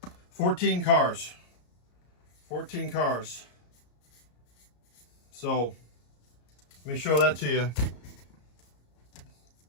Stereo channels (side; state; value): right; late; 34 ms